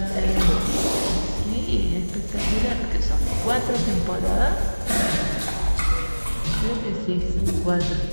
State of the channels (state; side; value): inverted; both; correlation -1.00